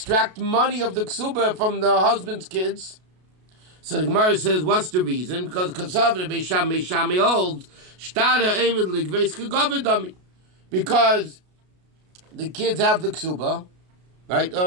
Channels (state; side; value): late; left; 33 ms